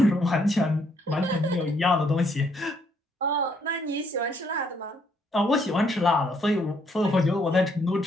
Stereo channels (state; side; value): normal; both; correlation 0.70